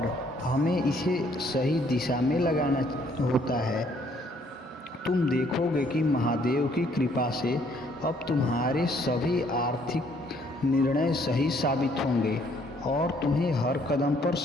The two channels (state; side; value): normal; both; correlation 0.65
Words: हमें इसे सही दिशा में लगाना होता है। तुम देखोगे कि महादेव की कृपा से अब तुम्हारे सभी आर्थिक निर्णय सही साबित होंगे और तुम्हें हर कदम पर